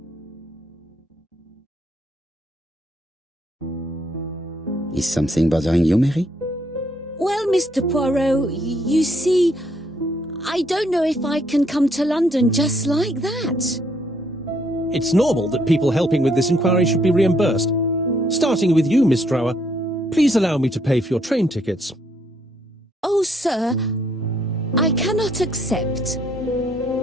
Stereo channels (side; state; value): both; normal; correlation 0.70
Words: Is something bothering you, Mary? Well, Mr. Poirot, you see, I don't know if I can come to London just like that. It's normal that people helping with this inquiry should be reimbursed. Starting with you, Miss Drower. Please allow me to pay for your train tickets. Oh, sir, I cannot accept.